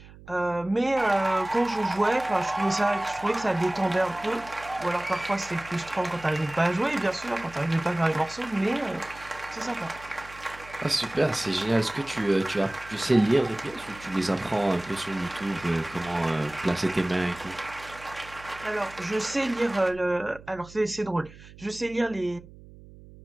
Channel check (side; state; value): right; noise; hum, 20 dB below the sound